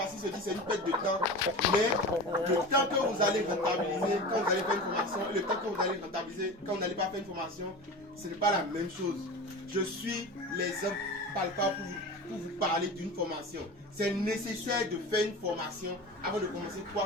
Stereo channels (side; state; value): both; normal; correlation 0.31